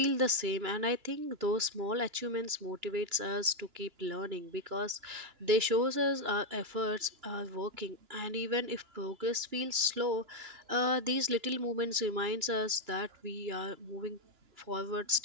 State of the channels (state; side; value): late; left; 2.9 ms